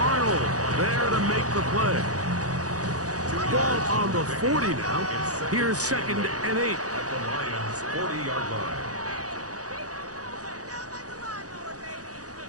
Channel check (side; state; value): left; late; 0.67 ms